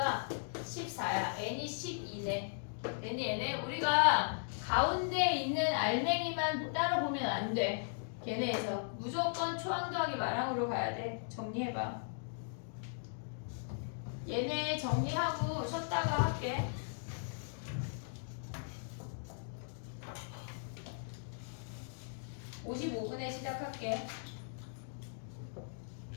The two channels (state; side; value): silent; right; digital silence